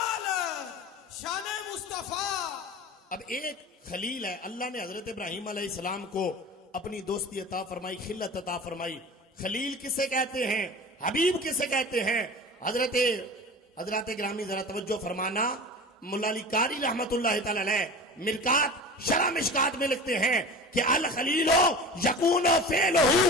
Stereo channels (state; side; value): normal; both; correlation 0.35